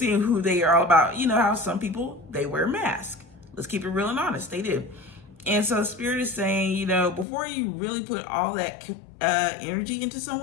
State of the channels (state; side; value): drops out; right; at 7.2 s